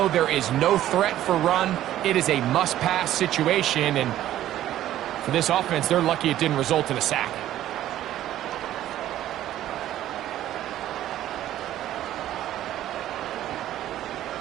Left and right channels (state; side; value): quieter; left; 12.9 dB